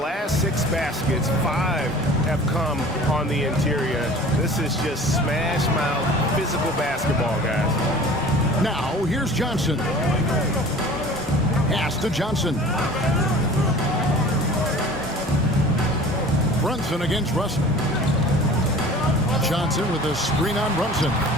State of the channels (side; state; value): both; normal; correlation 0.43